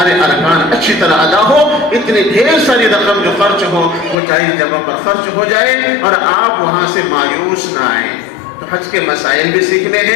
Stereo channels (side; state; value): right; drops out; at 4.2 s